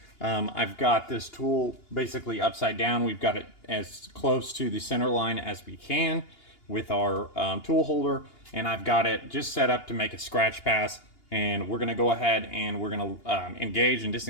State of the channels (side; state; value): right; late; 2.8 ms